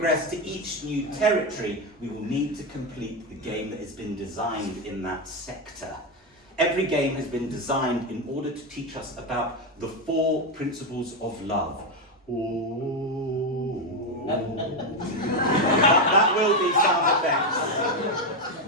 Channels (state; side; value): normal; both; correlation 0.08